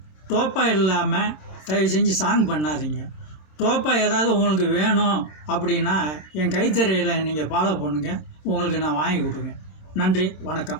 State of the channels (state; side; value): late; right; 26 ms